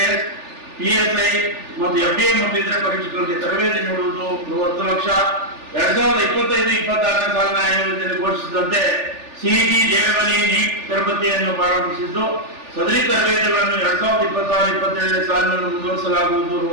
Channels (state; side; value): late; left; 3.4 ms